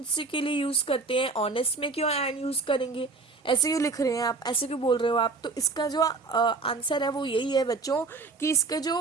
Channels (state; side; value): quieter; left; 3.9 dB